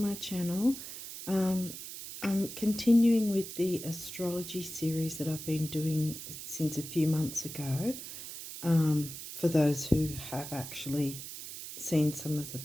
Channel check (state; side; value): noise; right; hiss, 10 dB below the sound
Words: channel. I'm continuing with the astrology series that I've been doing since a few months ago. For those who have actually seen some of the